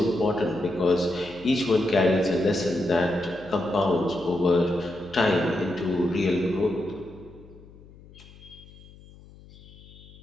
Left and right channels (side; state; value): left; noise; hum, 22 dB below the sound